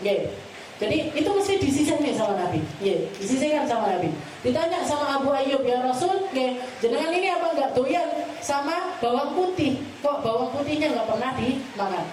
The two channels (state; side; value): identical; both; correlation 1.00